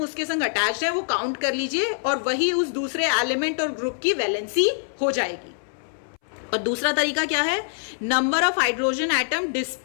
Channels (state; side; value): silent; right; 62 dB below the other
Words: संग अटैच्ड है वो काउंट कर लीजिए और वही उस दूसरे एलिमेंट और ग्रुप की वैलेंसी हो जाएगी। और दूसरा तरीका क्या है, number of hydrogen atom